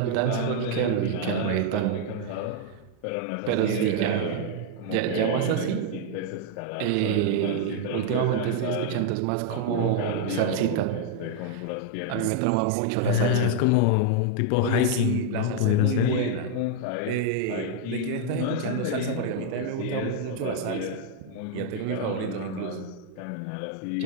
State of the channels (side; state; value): both; different; correlation 0.00